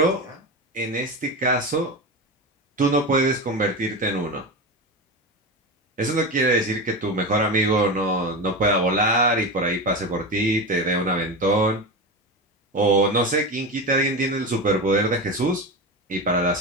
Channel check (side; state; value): both; normal; correlation 0.21